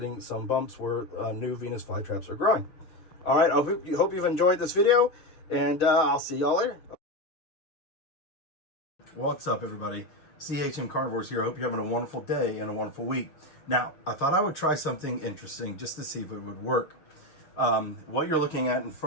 some bumps where new Venus flytraps are growing. All right, I hope you've enjoyed this video, and I'll see y'all later. What's up, everybody? CHM Carnivorous here. I hope you're having a wonderful day and a wonderful week. Now, I thought I would try something interesting just to see if it would work. What you're looking at in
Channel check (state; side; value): late; right; 6.5 ms